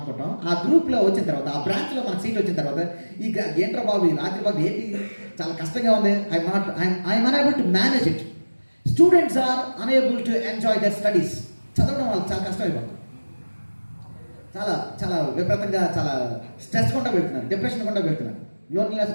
ఆ గ్రూప్లో వచ్చిన తర్వాత, ఆ బ్రాంచ్లో మనకు సీట్ వచ్చిన తర్వాత ఈ ఏంట్రా బాబు, ఈ రాత్రి బాబు ఏంటి చాలా కష్టంగా ఉంది, I'm unable to manage it. Students are unable to enjoy their studies. చదవడం వాళ్ళకి చాలా కష్టం అయిపోతుంది. చాలా చాలా విపరీతంగా చాలా స్ట్రెస్ గుండా వెళ్తున్నారు, డిప్రెషన్ గుండా వెళ్తున్నారు, లోన్లీనెస్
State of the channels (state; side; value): inverted; both; correlation -1.00